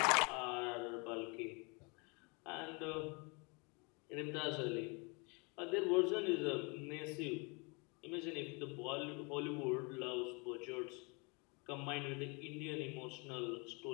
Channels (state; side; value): quieter; right; 30.9 dB